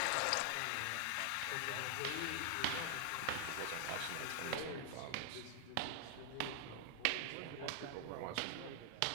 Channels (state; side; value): different; both; correlation 0.00